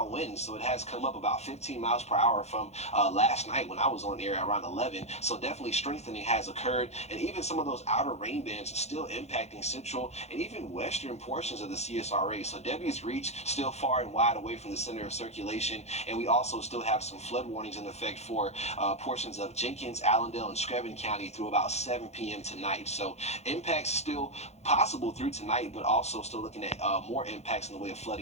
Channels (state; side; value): late; right; 0.32 ms